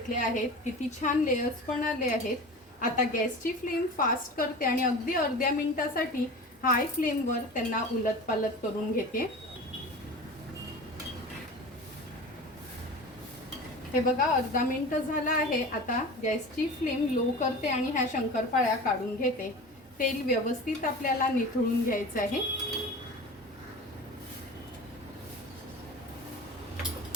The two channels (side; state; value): both; normal; correlation 0.34